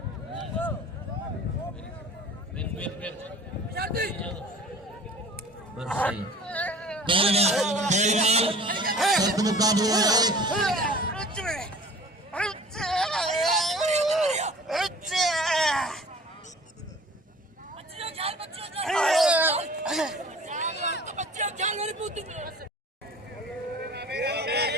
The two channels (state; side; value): normal; both; correlation 0.45